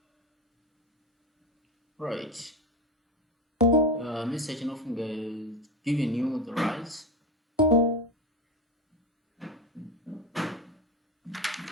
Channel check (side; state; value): both; normal; correlation 0.20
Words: Right. Mr. Chinofunga is giving you the rights.